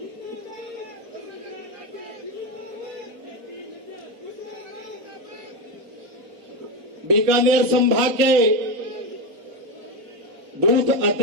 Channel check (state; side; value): late; left; 4.4 ms